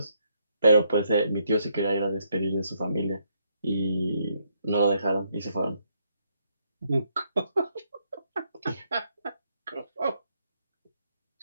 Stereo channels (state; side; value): inverted; both; correlation -0.75